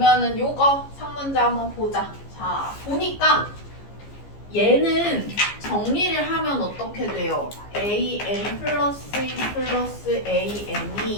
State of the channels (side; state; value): right; late; 15 ms